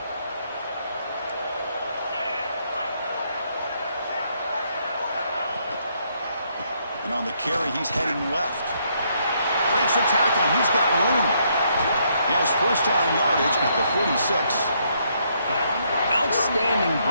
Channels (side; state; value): both; inverted; correlation -0.73